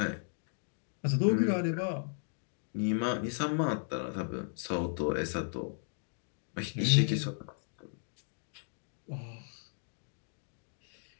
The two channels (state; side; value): silent; right; digital silence